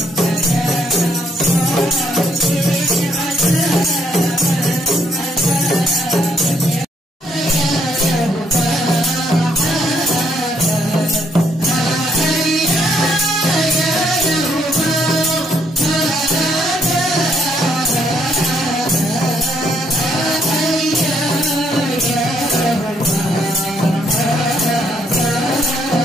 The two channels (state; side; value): normal; both; correlation 0.71